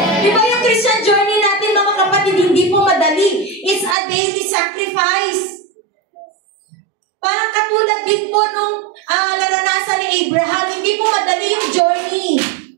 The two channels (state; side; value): drops out; left; at 4.0 s